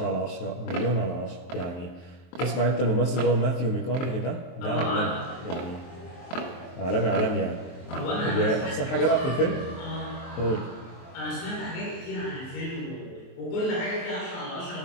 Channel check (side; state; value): right; late; 23 ms